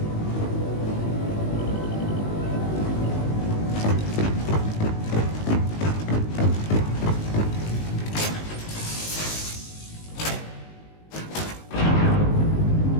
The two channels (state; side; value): late; right; 19 ms